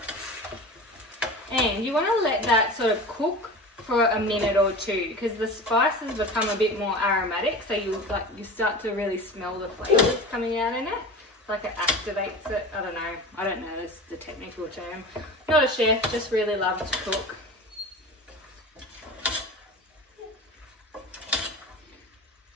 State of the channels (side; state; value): both; normal; correlation 0.33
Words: And you want to let that sort of cook for a minute or 2 because the spices become a bit more aromatic, so you start to really smell the flavours coming out in it. It's like it activates it. I don't know this the technical term. Not a chef, just really love to cook.